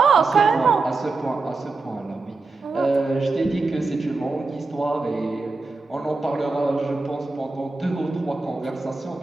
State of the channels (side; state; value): left; quieter; 3.7 dB